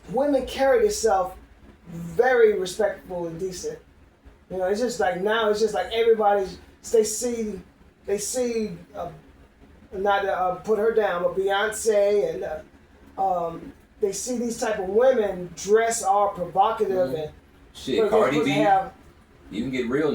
Women carry themselves very respectful and decent. You know, it's just like now. It's just like everybody's. They see, not to put her down, but Beyonce and they see these type of women dress all provocative and Shit, but Cardi they B. have, You can get real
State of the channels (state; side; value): identical; both; correlation 1.00